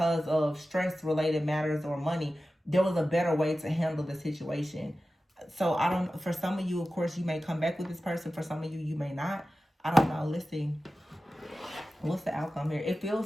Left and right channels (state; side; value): normal; both; correlation 0.94